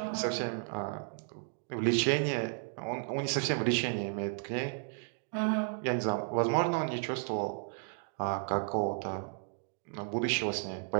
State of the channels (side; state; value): left; silent; 55 dB below the other